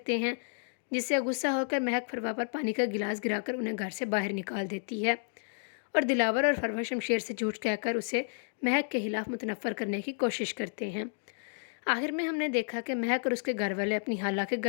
हैं, जिससे गुस्सा होकर महक फरवा पर पानी का गिलास गिराकर उन्हें घर से बाहर निकाल देती है और दिलावर और फरवा शमशेर से झूठ कहकर उसे महक के खिलाफ मुतनफ़र करने की कोशिश करते हैं। आखिर में हमने देखा कि महक और उसके घर वाले अपनी खाला के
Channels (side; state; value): right; silent; digital silence